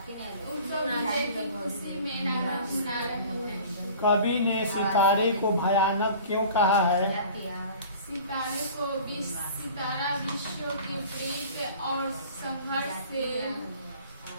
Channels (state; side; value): inverted; both; correlation -0.44